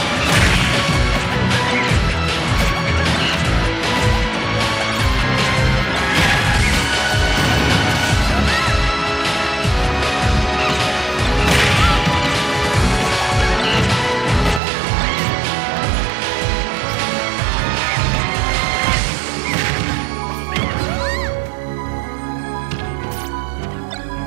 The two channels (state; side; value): drops out; left; at 14.6 s